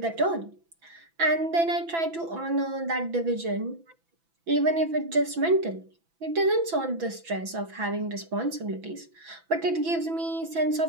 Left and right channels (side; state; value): left; late; 6.0 ms